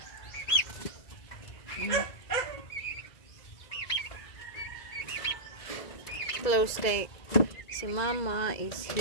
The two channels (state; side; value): late; right; 2.0 ms